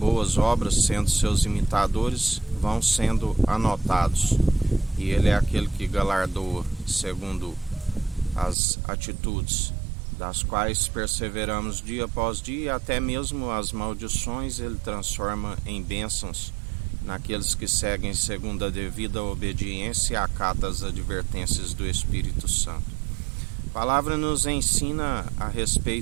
obras, sendo seus imitadores, vão sendo anotados, e Ele é aquele que galardoa segundo as atitudes, das quais perseveramos dia após dia, e até mesmo as maldições Ele transforma em bênçãos naqueles que seguem segundo a devida obediência e acata as advertências do Espírito Santo. A palavra nos ensina a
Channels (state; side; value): drops out; left; at 8.6 s